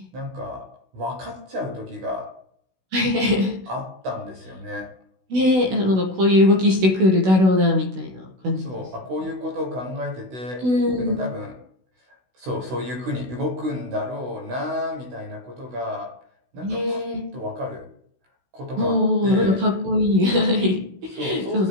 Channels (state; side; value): late; left; 16 ms